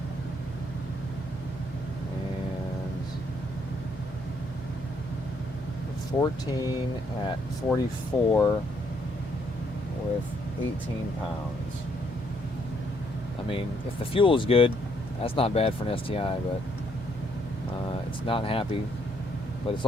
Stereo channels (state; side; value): normal; both; correlation 0.70